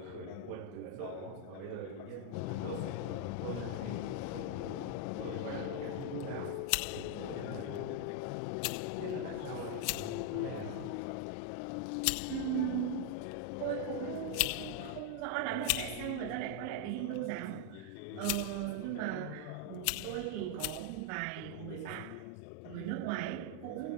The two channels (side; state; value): both; different; correlation 0.00